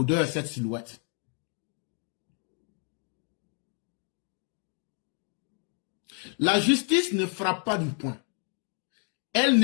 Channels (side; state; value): right; quieter; 39.7 dB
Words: cette silhouette. La justice ne frappe pas du poing. Elle